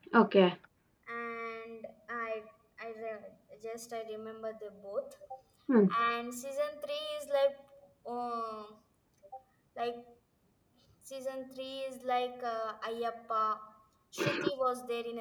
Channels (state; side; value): identical; both; correlation 1.00